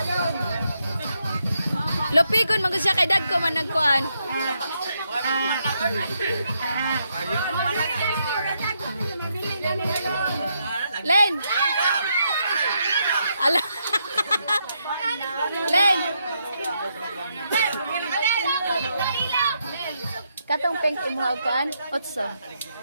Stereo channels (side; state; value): both; inverted; correlation -0.79